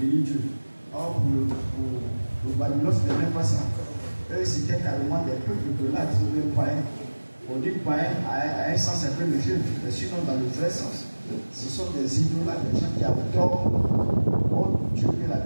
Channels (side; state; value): both; inverted; correlation -1.00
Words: bénit Dieu. Or, pour Babylone, ce n'est même pas ça. Eux, c'était carrément des peuples de là, ils sont même païens. On dit païen à un sens un peu léger, mais sinon, dans le vrai sens, ce sont des idolâtres, des gens qui adorent Dieu et la